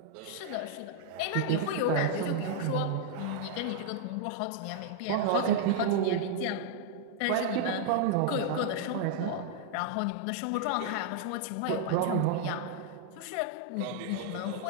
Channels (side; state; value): both; different; correlation -0.01